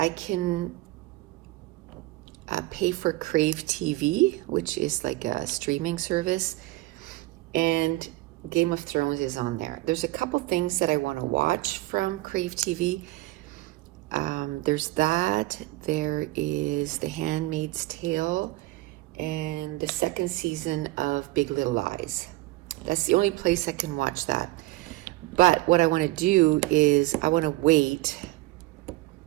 can pay for Crave TV, which is like a streaming service, and Game of Thrones is on there. There's a couple things that I want to watch from Crave TV. There's that. There is The Handmaid's Tale and the second season of Big Little Lies. That's the only place I can watch that. But what I want to do is I want to wait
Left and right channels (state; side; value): quieter; left; 19.0 dB